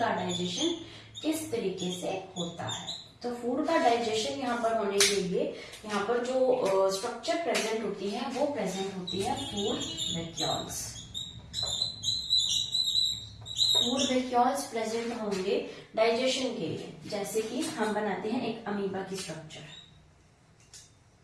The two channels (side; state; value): both; identical; correlation 1.00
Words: डाइजेशन किस तरीके से होता है। तो फूड का डाइजेशन यहाँ पर होने के लिए यहाँ पर जो स्ट्रक्चर प्रेजेंट होती है वो प्रेजेंट होती है food vacuoles. Food vacuoles present होंगे डाइजेशन के लिए। जैसे कि हम बनाते हैं एक अमीबा की स्ट्रक्चर,